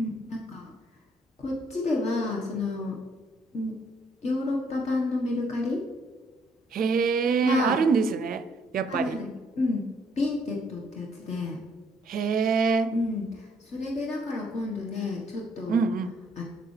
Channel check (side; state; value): both; normal; correlation 0.68